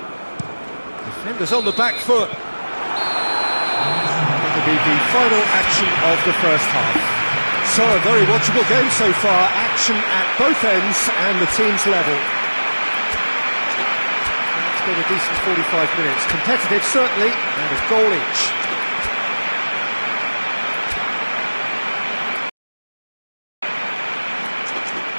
Defenders on the back foot. That'll be the final action of the first half. So, a very watchable game so far. Action at both ends and the team's level. It's been a decent 45 minutes. Competitive, certainly, and a goal each.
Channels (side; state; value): both; inverted; correlation -1.00